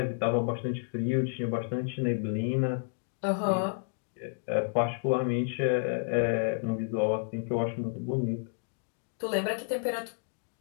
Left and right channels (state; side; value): silent; right; digital silence